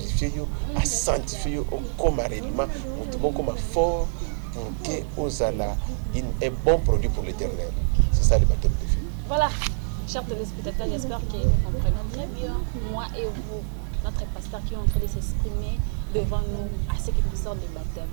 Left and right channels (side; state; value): left; silent; 61 dB below the other